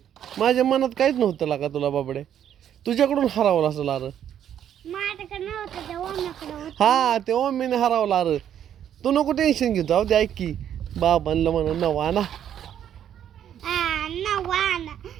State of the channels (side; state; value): left; quieter; 9.9 dB